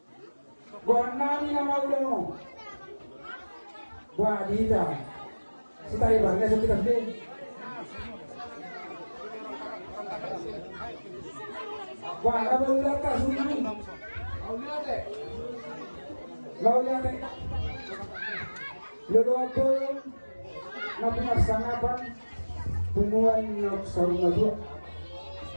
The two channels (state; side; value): inverted; both; correlation -1.00